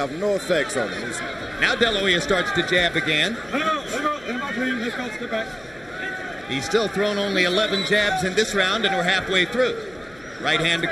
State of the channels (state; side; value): noise; left; hum, 26 dB below the sound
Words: no effects on him. Now De La Hoya starts to jab again. He's still thrown only 11 jabs in this round, and we're halfway through. Right hand